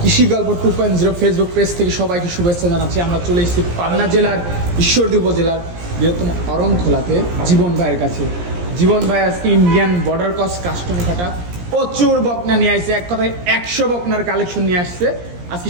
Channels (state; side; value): late; left; 17 ms